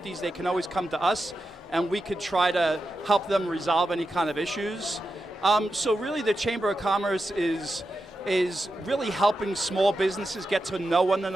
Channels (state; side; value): normal; both; correlation 0.89